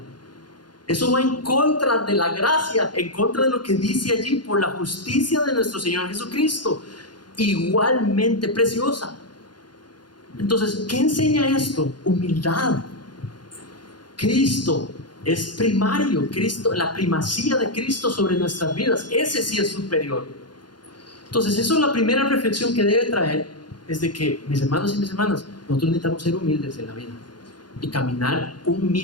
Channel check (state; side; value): late; right; 0.71 ms